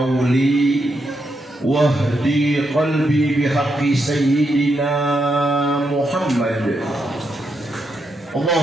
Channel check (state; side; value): normal; both; correlation 0.82